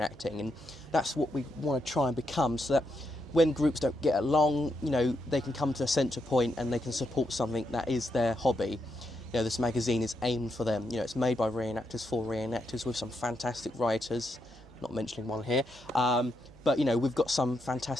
and that's what we want to try and become, so that when groups don't get along, you know, they can come to a centre point and they can support something that is their hobby. You know, this magazine is aimed for them. You know, it's made by reenactors for reenactors with some fantastic writers, not mentioning one here. But, you know, we've got some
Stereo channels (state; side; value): normal; both; correlation 0.81